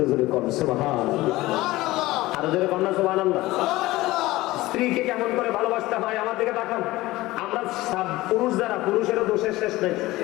জোরে কোন সুবহানাল্লাহ, আর জোরে কোন সুবহানাল্লাহ। স্ত্রীকে কেমন করে ভালোবাসতে হয় আমার দিকে তাকান। আমরা পুরুষ যারা, পুরুষেরও দোষের শেষ নেই,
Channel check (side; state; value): right; quieter; 18.4 dB